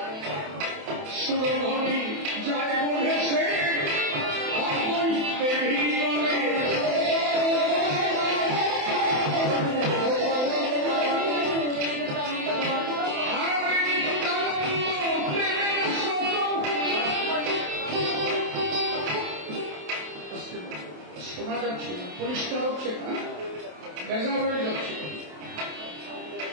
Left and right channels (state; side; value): late; left; 27 ms